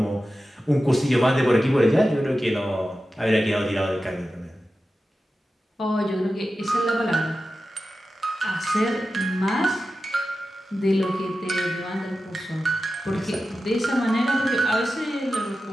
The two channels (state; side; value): normal; both; correlation 0.93